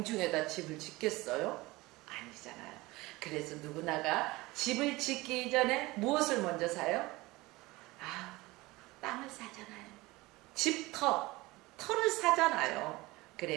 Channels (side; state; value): left; quieter; 21.0 dB